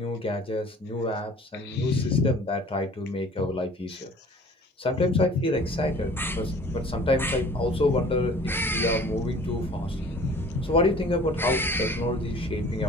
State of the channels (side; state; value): both; normal; correlation 0.48